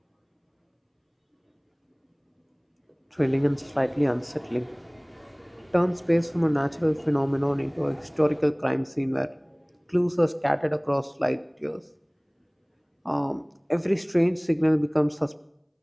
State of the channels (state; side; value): identical; both; correlation 1.00